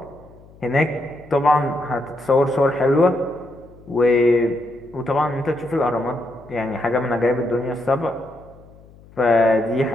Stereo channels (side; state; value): left; noise; hum, 24 dB below the sound